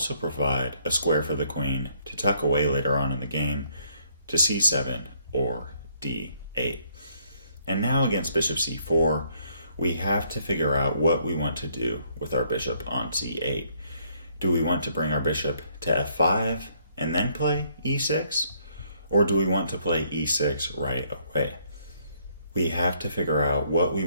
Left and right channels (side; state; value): both; inverted; correlation -0.67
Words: provide a square for the queen to tuck away later on in the game to c7 or d8. And now against bishop c4, we have to figure out what we want to do with our bishop on c8. Do we want to bring our bishop to f5 and then play e6? Or do we want to play e6 right away? We have to figure out what we